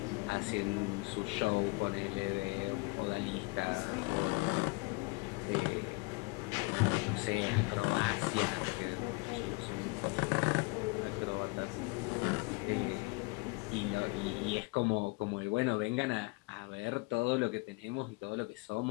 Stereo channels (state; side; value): quieter; right; 27.4 dB